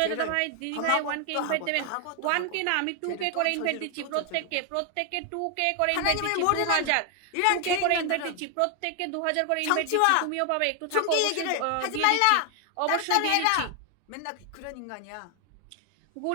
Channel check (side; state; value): both; different; correlation 0.00